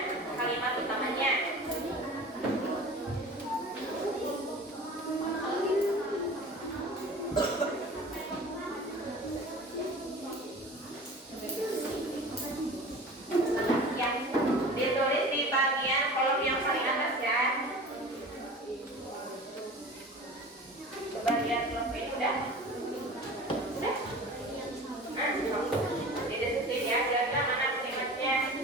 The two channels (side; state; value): both; normal; correlation 0.38